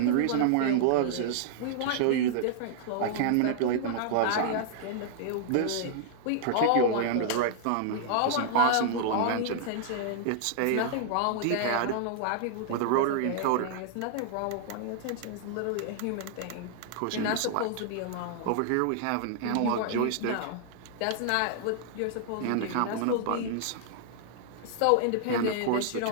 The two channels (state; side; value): different; both; correlation -0.01